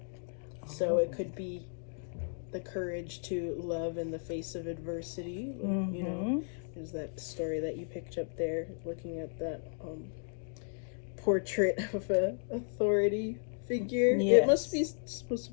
So it could be the courage to love in the face of adversity. Mm-hmm. You know, there's that story that you picked up there, looking at that portrait of a authority figure. Yes. It must be supposed to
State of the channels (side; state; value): right; silent; digital silence